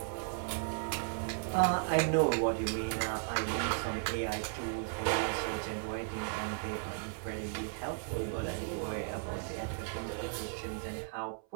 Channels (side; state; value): left; silent; 54 dB below the other